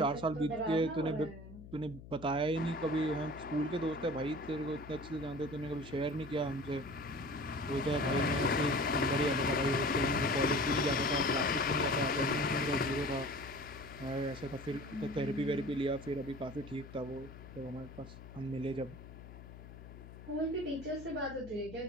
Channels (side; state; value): left; noise; hum, 15 dB below the sound